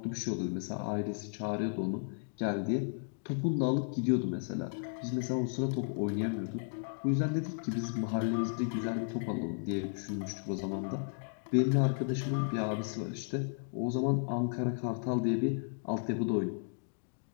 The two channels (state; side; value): silent; right; digital silence